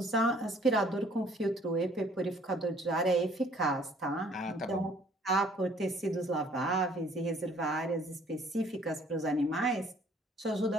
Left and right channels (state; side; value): normal; both; correlation 0.58